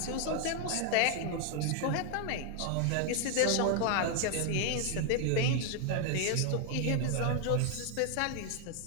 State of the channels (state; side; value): different; both; correlation 0.00